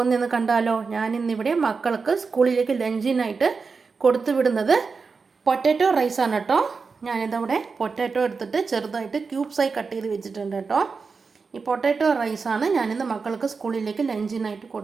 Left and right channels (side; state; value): left; quieter; 4.8 dB